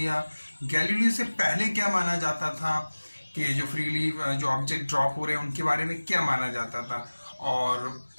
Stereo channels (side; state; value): both; inverted; correlation -1.00